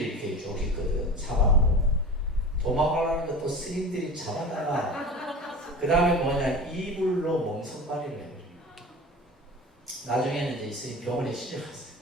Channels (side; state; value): both; normal; correlation 0.34